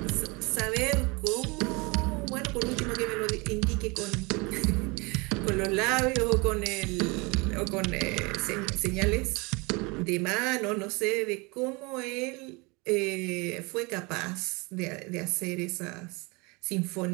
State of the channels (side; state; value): left; quieter; 27.5 dB